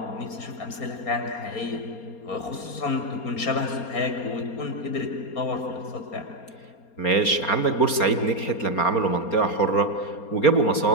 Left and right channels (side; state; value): right; late; 4.3 ms